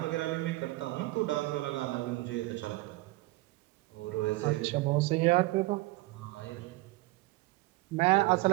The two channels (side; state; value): left; quieter; 20.4 dB